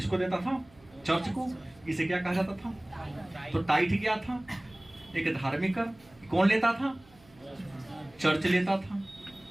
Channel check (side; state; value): right; noise; hum, 27 dB below the sound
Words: देता था? चर्च को। इसे क्या कहा जाता था? तो टाइथ क्या था? एक धार्मिक कर। कौन लेता था? चर्च लेता था।